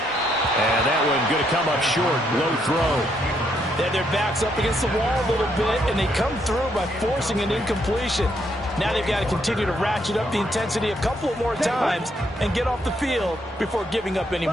And that one going to come up short. Low throw. They had their backs up against the wall a little bit, and they come through by forcing an incompletion. Now they've got to continue to ratchet up the intensity a couple of more times and get off the field before giving up any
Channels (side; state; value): both; normal; correlation 0.74